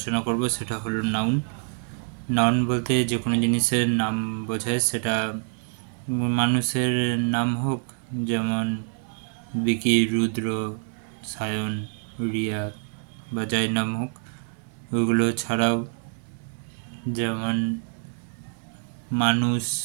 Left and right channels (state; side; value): silent; left; 61 dB below the other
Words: করব সেটা হলো নাউন। নাউন বলতে যে কোনো জিনিসের নাম বোঝায়, সেটা মানুষের নাম হোক, যেমন বিকি, রুদ্র, সায়ন, রিয়া বা যাই নাম হোক। ওইগুলো ছাড়াও যেমন মানুষ,